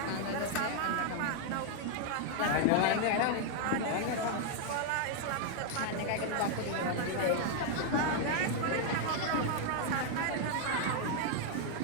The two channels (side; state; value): both; different; correlation 0.00